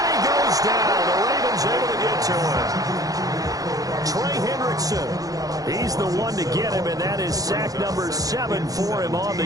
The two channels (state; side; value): late; left; 0.17 ms